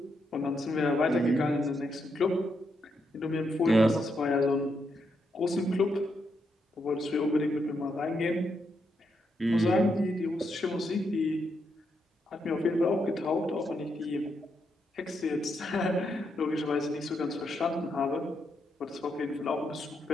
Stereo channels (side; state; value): both; normal; correlation 0.81